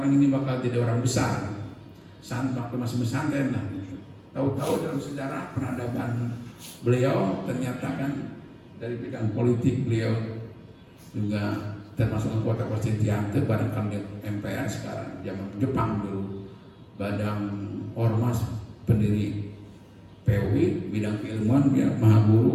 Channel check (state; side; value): identical; both; correlation 1.00